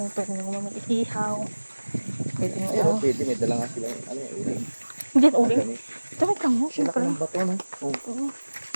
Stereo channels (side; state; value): both; inverted; correlation -1.00